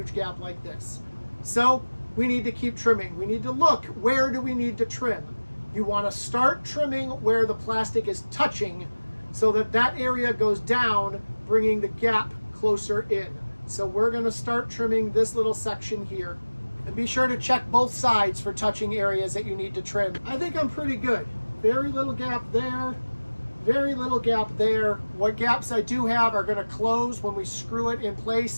gap like this. So we need to keep trimming. We need to look, where do we need to trim? You want to start trimming where the plastic is touching so that that area goes down, bringing the gap closer in. So we're going to start trimming this little section here. And be sure to check both sides for touching areas that you need to trim. I think I'm pretty good. Very little gap there, very little gap there. What gaps I do have are going to close when we screw it in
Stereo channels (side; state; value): both; inverted; correlation -1.00